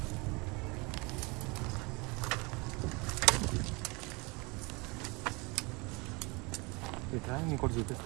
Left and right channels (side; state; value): left; quieter; 27.4 dB